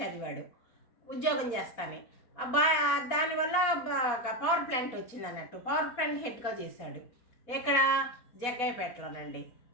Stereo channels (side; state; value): right; late; 4.1 ms